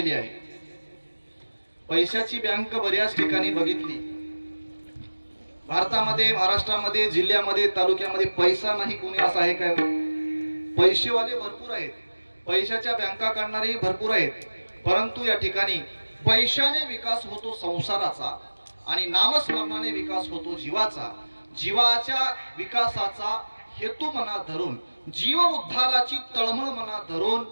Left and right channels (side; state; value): both; inverted; correlation -1.00